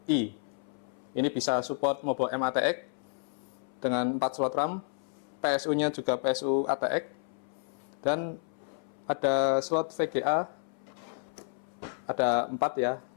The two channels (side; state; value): right; silent; 57 dB below the other